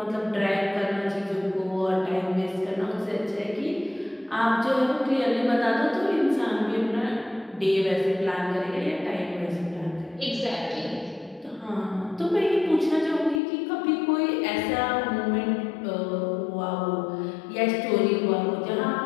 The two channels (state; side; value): drops out; right; at 13.4 s